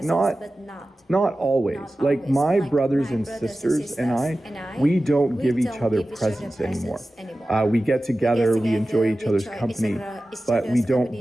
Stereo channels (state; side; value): normal; both; correlation 0.95